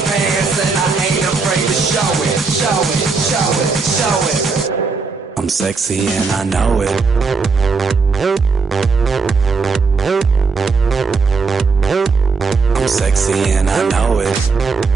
pants and I ain't afraid to show it, show it, show it, show it. I'm sexy and I know it. I'm sexy and I know it.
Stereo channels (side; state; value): left; quieter; 4.6 dB